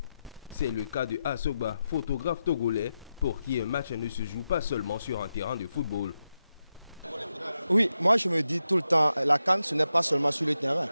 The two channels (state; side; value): inverted; both; correlation -0.89